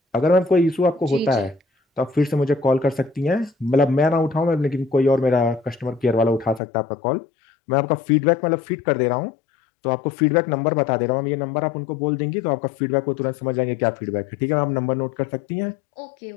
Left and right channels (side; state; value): right; drops out; at 6.6 s